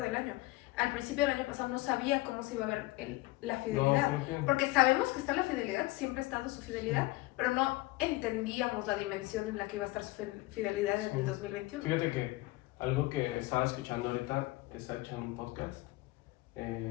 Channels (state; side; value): quieter; right; 20.1 dB